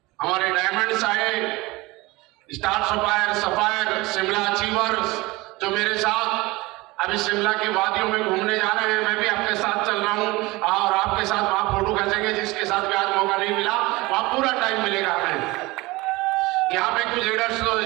हमारे डायमंड्स आए, स्टार सफायर, शिमला अचीवर्स, जो मेरे साथ अभी शिमला की वादियों में घूमने जा रहे हैं। मैं भी आपके साथ चल रहा हूं और आपके साथ वहां फोटो खींचेंगे। जिसके साथ भी आज मौका नहीं मिला वहां पूरा टाइम मिलेगा हमें। यहाँ पे कुछ लीडर्स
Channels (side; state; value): left; quieter; 21.8 dB